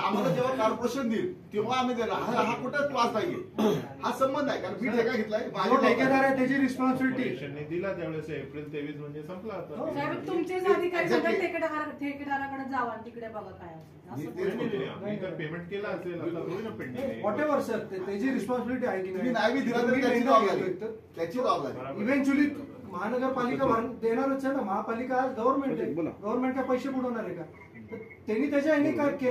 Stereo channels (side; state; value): both; identical; correlation 1.00